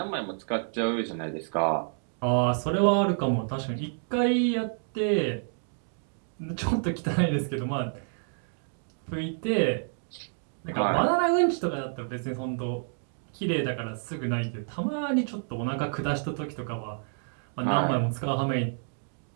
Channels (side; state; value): left; silent; digital silence